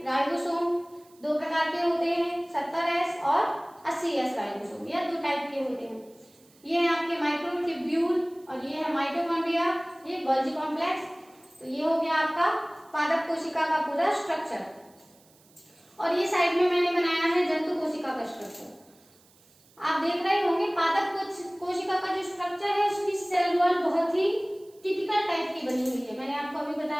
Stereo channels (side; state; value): right; noise; hiss, 29 dB below the sound